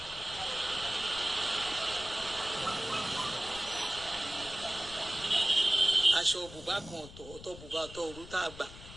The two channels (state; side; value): noise; left; rumble, 16 dB below the sound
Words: aṣọ bùbá kan ọ̀tọ̀ bùbá ọ̀tọ̀ òru tá a gbà